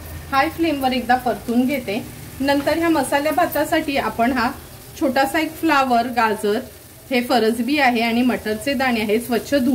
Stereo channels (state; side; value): identical; both; correlation 1.00